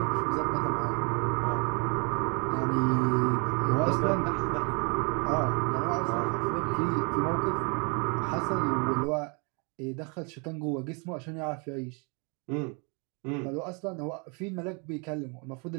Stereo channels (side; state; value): left; quieter; 33.8 dB